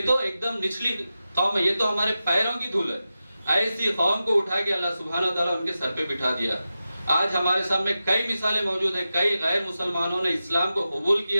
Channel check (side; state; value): both; inverted; correlation -0.92